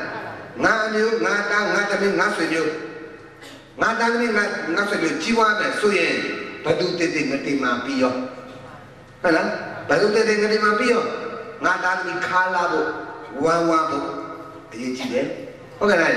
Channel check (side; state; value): both; identical; correlation 1.00